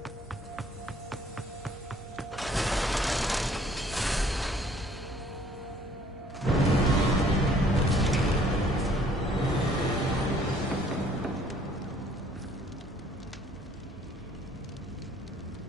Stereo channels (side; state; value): both; normal; correlation 0.59